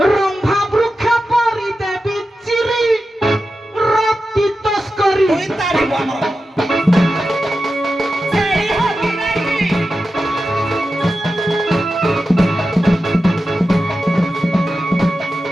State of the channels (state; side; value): normal; both; correlation 0.91